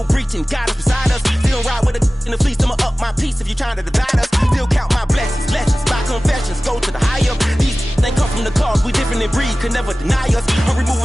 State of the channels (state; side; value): normal; both; correlation 0.97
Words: breaching. God is beside us, still ride with a in the fleece. I'ma up my piece if you're trying to divide us. Still count my blessings, lessons, my confessions, go to the higher. These they come from the cause, we different in breed, could never deny us. I'm